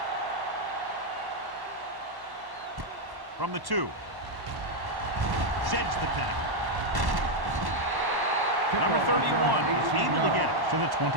From the 2. Sheds the tackle. Number 31 is able to get it to the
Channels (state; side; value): late; left; 1.1 ms